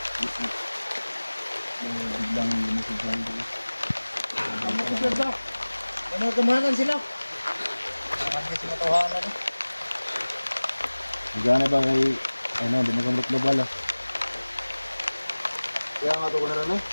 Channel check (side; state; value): both; inverted; correlation -1.00